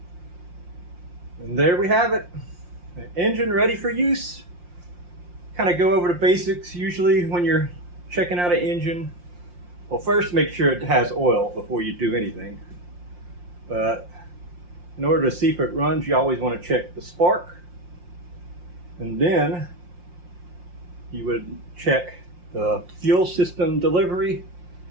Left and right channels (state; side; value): late; left; 5.7 ms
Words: And there we have it. An engine ready for use. Kind of go over the basics usually when you're checking out an engine. Well, first make sure it has oil before you do anything. But In order to see if it runs, you always want to check the spark, and then you would check the fuel system delivery.